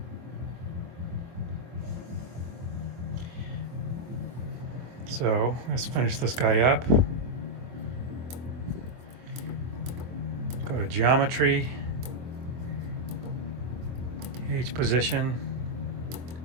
So let's finish this guy up. Go to geometry, H position,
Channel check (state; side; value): late; left; 24 ms